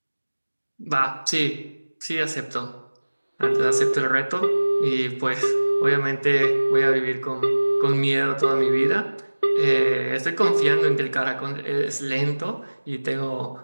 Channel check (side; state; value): both; inverted; correlation -1.00